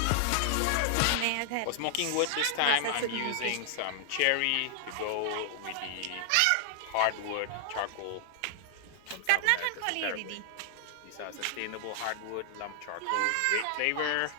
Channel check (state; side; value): different; both; correlation 0.00